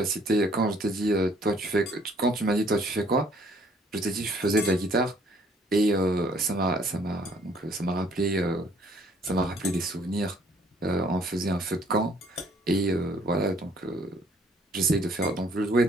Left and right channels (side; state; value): both; normal; correlation 0.61